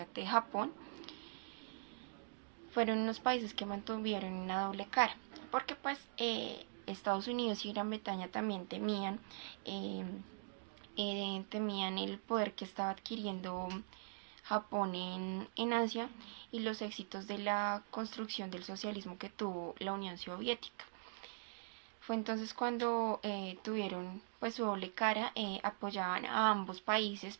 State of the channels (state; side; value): silent; left; digital silence